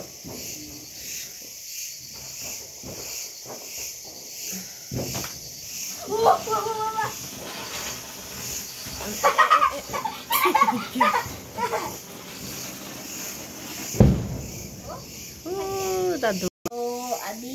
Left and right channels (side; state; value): both; identical; correlation 1.00